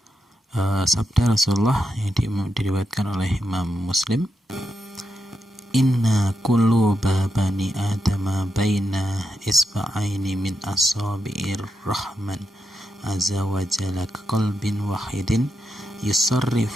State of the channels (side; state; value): both; normal; correlation 0.85